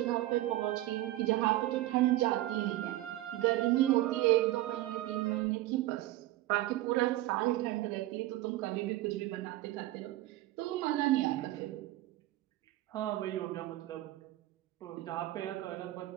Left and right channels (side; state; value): left; quieter; 16.2 dB